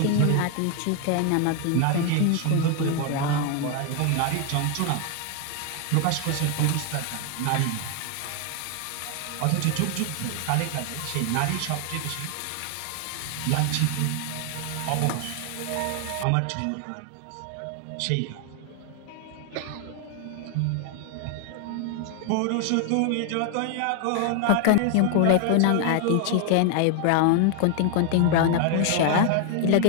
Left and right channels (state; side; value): different; both; correlation 0.00